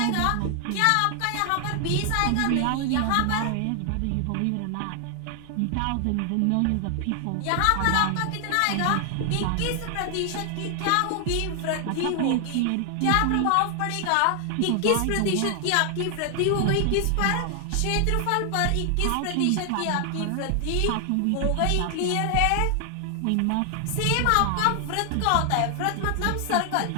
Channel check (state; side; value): different; both; correlation 0.00